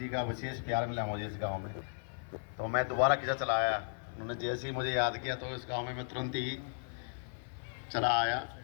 का विशेष प्यार मिला मुझे इस गांव में, तो मैं दोबारा किसा चला आया। उन्होंने जैसे ही मुझे याद किया तो इस गांव में मैं तुरंत ही चला आया।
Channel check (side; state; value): right; silent; 54 dB below the other